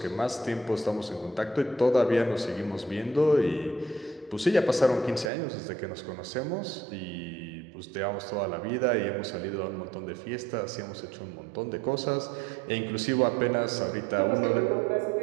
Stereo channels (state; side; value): drops out; left; at 5.3 s